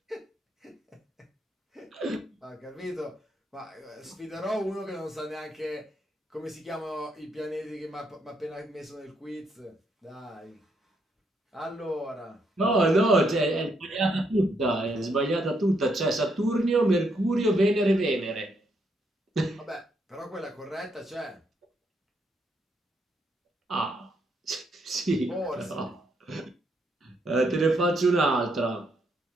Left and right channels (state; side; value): normal; both; correlation 0.76